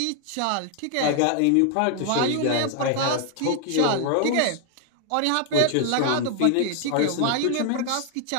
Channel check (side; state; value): both; different; correlation 0.00